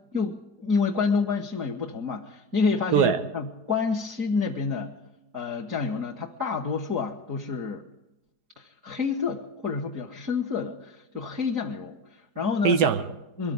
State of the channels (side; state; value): left; late; 4.8 ms